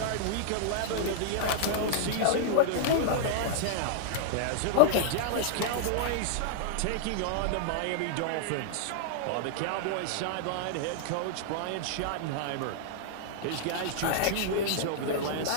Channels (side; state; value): both; different; correlation -0.01